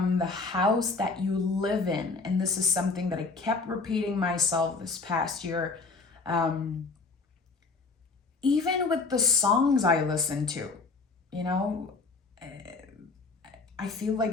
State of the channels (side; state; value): right; quieter; 4.0 dB